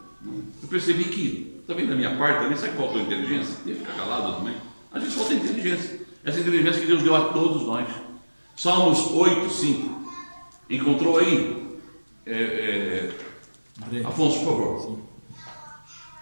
eu percebi que, também da minha parte, também, sabe que faltou inteligência? Ia ficar calado também. A gente falta inteligência. Essa inteligência que Deus deu a todos nós. Salmos 8:5. Encontrou aí? Afonso, por favor.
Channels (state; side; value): inverted; both; correlation -1.00